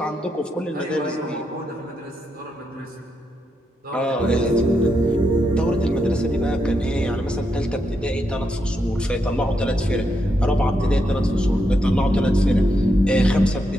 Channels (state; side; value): normal; both; correlation 0.82